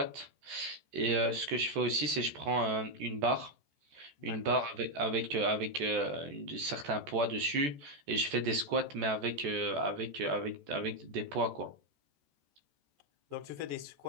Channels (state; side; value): late; left; 14 ms